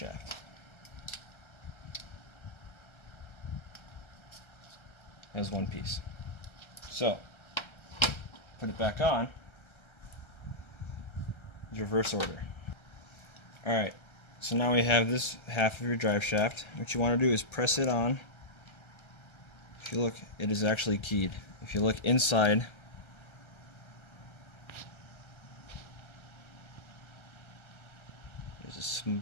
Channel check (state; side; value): late; right; 1.3 ms